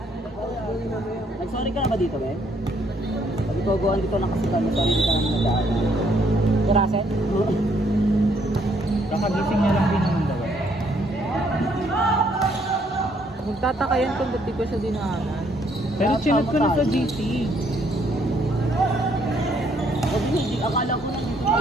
Nag-sorry ka na ba dito, Ben? Pag ito, dito lang kasi kami, sorry di ka naman nagdaan. Kurasen? Kakagising niya lang din naman daw. Magtataka yan kung ba't di ko siya dinaanan. Pero chinag ko na sa GC. Huwag hindi, akala ko na dito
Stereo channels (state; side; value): normal; both; correlation 0.68